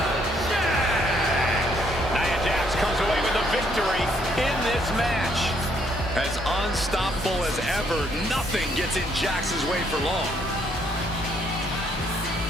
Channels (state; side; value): normal; both; correlation 0.69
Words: Jax. Nia Jax comes away with a victory in this match. As unstoppable as ever, nothing gets in Jax's way for long.